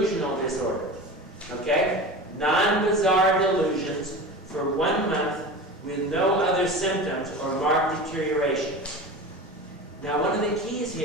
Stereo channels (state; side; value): normal; both; correlation 0.32